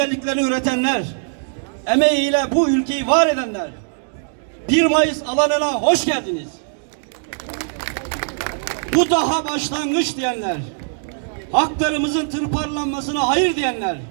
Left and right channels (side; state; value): left; silent; digital silence